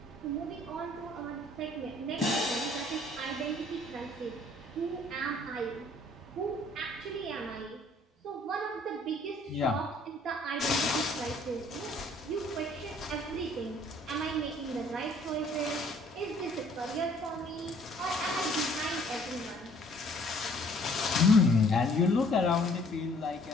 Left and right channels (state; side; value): normal; both; correlation 0.58